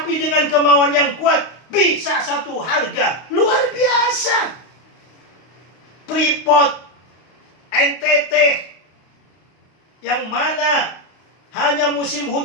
dengan kemauan yang kuat, bisa satu harga. Luar biasa. Freeport, NTT, yang mana hanya musim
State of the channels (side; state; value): right; late; 32 ms